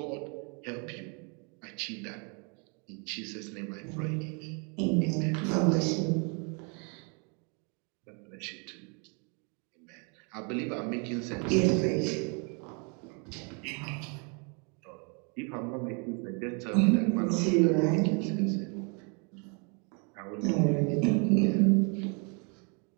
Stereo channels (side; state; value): left; quieter; 35.7 dB